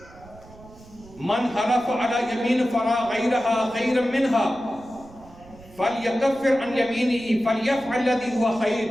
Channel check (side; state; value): right; noise; rumble, 22 dB below the sound